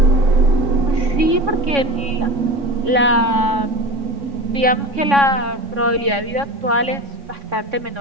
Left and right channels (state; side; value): late; left; 3.6 ms